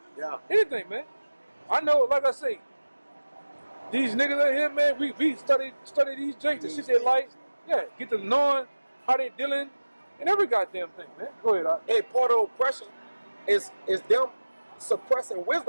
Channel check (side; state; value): both; inverted; correlation -1.00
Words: Yeah. Anything, man. I know, like I say, these niggas out here, man, we study these jakes and shit they like. Yeah, get to knowing how they dealing and every goddamn thing, man. Go ahead, Hey, part of oppression is them suppressing